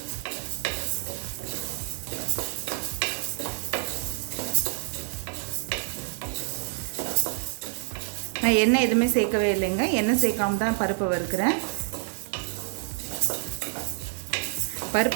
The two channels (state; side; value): silent; left; 60 dB below the other